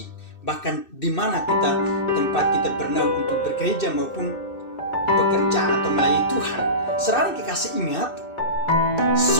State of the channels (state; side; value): late; right; 2.6 ms